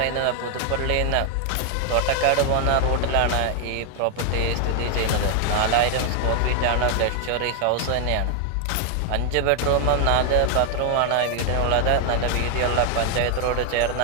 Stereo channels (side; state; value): both; different; correlation 0.00